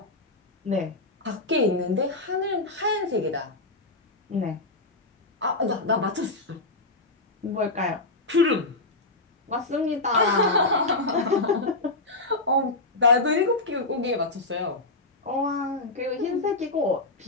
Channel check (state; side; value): quieter; right; 3.1 dB